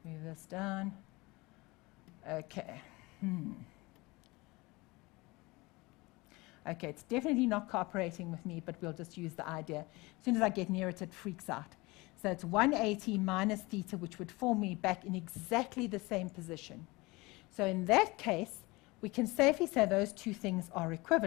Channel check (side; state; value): right; quieter; 23.1 dB